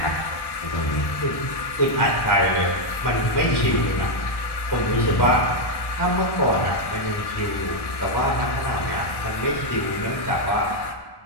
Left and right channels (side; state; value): right; late; 1.1 ms